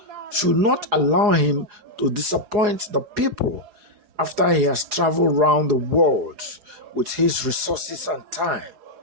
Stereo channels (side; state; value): left; late; 4.8 ms